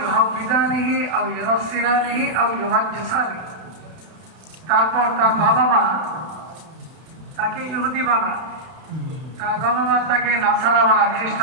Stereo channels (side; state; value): left; late; 31 ms